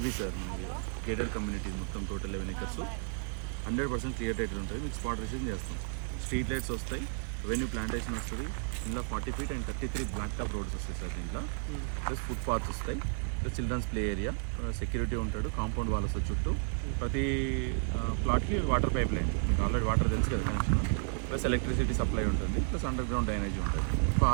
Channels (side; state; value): left; silent; 56 dB below the other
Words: సార్. మనకి గేటెడ్ కమ్యూనిటీ మొత్తం టోటల్ 11 acres 100% క్లియర్ టైటిల్ ఉంటుంది. మీకు స్పాట్ రిజిస్ట్రేషన్ చేస్తాం. స్ట్రీట్ లైట్స్ వస్తాయి, రెవెన్యూ ప్లాంటేషన్ వస్తుంది. ఇందులో 40 feet and 33 black top roads వస్తాయి సార్. దీంట్లో ప్లస్ ఫుట్ పాత్స్ వస్తాయి, plus children's play area, security ఉంటాడు, కాంపౌండ్ వాల్ వస్తుంది చుట్టూ. ప్రతి ప్లాట్కి వాటర్ పైప్ లైన్, మీకు ఆల్రెడీ వాటర్ తెలుసు కదా కనెక్షన్, ప్లస్ ఎలక్ట్రిసిటీ సప్లై ఉంటుంది, ప్లస్ అండర్ గ్రౌండ్ డ్రైనేజ్ ఉంటుంది.